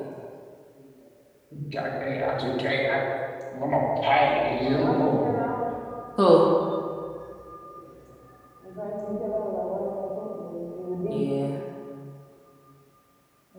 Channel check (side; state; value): both; identical; correlation 1.00